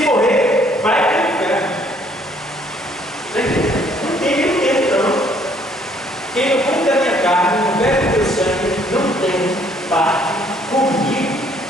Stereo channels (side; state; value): both; normal; correlation 0.63